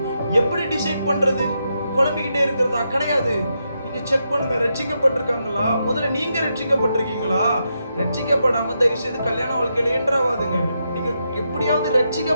எப்படி டிசைட் பண்றது? குழம்பிக்கிட்டே இருக்கிறதா? கிடையாது. நீங்க செக் பண்ணுங்க, ரட்சிக்கப்பட்டிருக்காங்களா? முதல்ல நீங்க ரட்சிக்கப்பட்டிருக்கீங்களா? ரட்சிக்கப்படாம தயவு செய்து கல்யாண வாழ்க்கையில என்ட்ராவாதுங்க. நீங்க எப்படியாவது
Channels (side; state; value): both; inverted; correlation -0.83